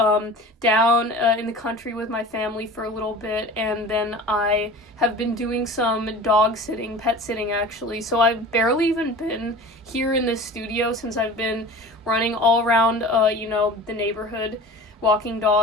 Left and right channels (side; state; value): both; normal; correlation 0.38